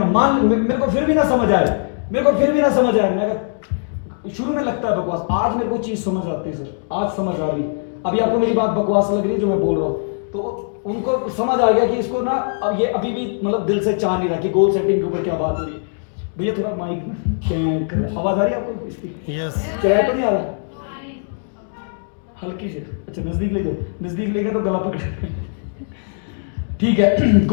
मान मेरे को फिर भी ना समझ आया, मैं शुरू में लगता है बकवास, आज मेरे को चीज समझ आती है सर, आज समझ आ रही। अभी आपको मेरी बात बकवास लग रही है जो मैं बोल रहा हूँ, तो उनको समझ आ गया कि इसको ना अब ये अभी भी मतलब दिल से चाह नहीं रहा कि गोल सेटिंग के ऊपर क्या बात हो रही है। भैया थोड़ा माइक में आवाज आ रही है आपको इसकी? यस। किराया तो नहीं आ रहा? हल्की से, अच्छा नजदीक ले जाओ, नजदीक ले गया तो गला पकड़। ठीक है,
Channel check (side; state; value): right; silent; digital silence